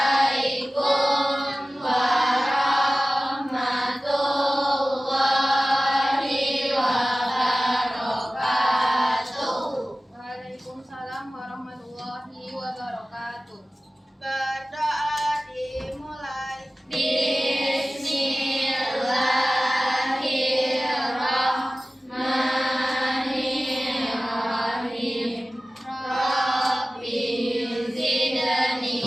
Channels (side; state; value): both; normal; correlation 0.97